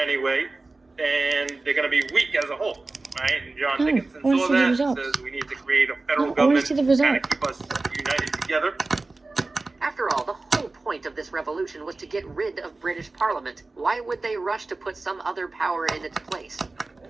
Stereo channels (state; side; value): quieter; left; 3.4 dB